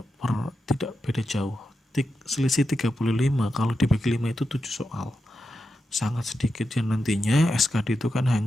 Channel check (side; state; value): both; normal; correlation 0.88